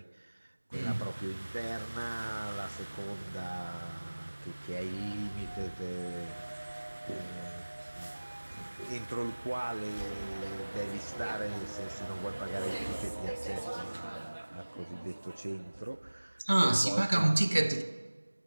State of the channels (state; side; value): inverted; both; correlation -1.00